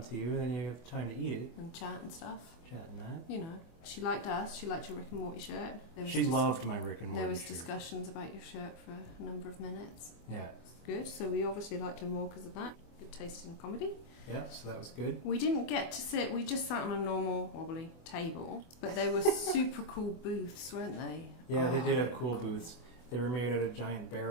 you, and then you have time to eat it. And chat and stuff. Chat and that. You know, she liked us. She liked your Rick and Morty shirt. She loved my Rick and Morty shirt. There was discussions about your shirt for a number of minutes. Yeah. It's good. So we obviously liked her more because of that. Good taste in comedy. Yeah, so that was good. We didn't get to sit. We just sat on a normal wobbly table, but they were super cool booths, weren't they? Yeah, they did have cool booths. They were made out of giant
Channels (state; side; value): late; right; 24 ms